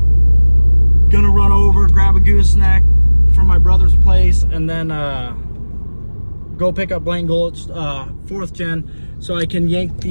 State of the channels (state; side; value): inverted; both; correlation -1.00